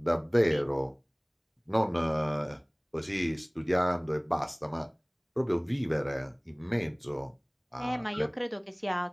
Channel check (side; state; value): both; identical; correlation 1.00